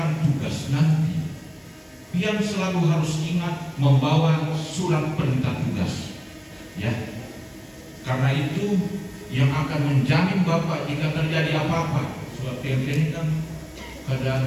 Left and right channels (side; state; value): both; identical; correlation 1.00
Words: tugas nanti, pian selalu harus ingat membawa surat perintah tugas, ya. Karena itu yang akan menjamin Bapak jika terjadi apa-apa. Surat pian ini kan